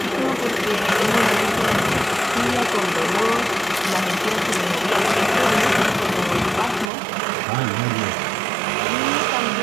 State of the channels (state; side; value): drops out; left; at 6.9 s